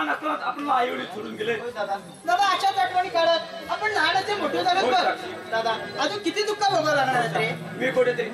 असताना आपल्याला आई वडील सोडून गेले. दादा अशाच आठवणी काढत आपण लहानाचे मोठे झाले बघ दादा अजून किती दुःख भोगावं लागणार आहेत रे. मी कुठेतरी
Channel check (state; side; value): identical; both; correlation 1.00